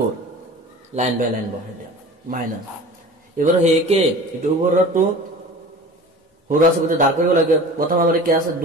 লাইন বাই লাইন বহাই দিয়া মাইনাস এবাৰ হেকে এটো ওপৰটো সৰু আছে গতিকে ধাৰ কৰিব লাগে প্ৰথম আমাৰ কি আছে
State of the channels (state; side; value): normal; both; correlation 0.39